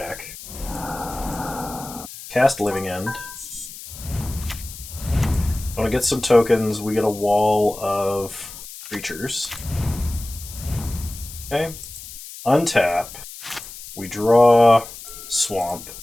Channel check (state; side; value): noise; left; hiss, 14 dB below the sound